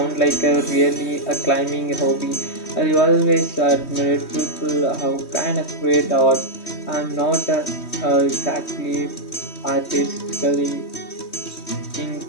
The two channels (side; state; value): right; late; 3.1 ms